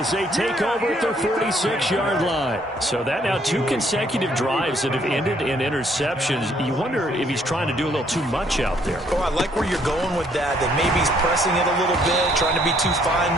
they take over at their 46-yard line. So that now 2 consecutive drives that have ended in interceptions. You wonder if he's trying to do a little too much out there. Oh, I like where you're going with that maybe he's pressing it a little bit, trying to be too fine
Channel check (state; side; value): normal; both; correlation 0.66